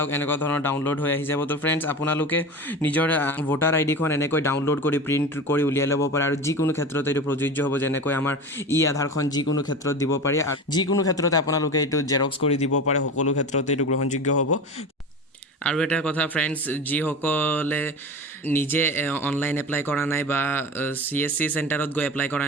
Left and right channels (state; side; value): normal; both; correlation 0.30